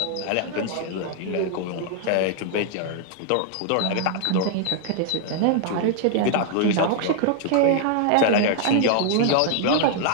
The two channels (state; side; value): different; both; correlation 0.00